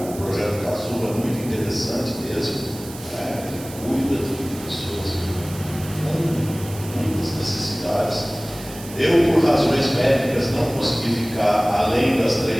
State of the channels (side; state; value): right; noise; hiss, 15 dB below the sound